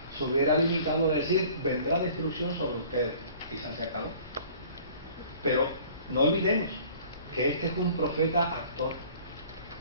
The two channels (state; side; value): inverted; both; correlation -0.50